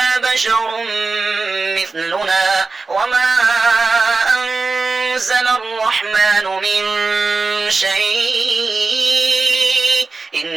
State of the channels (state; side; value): quieter; left; 4.0 dB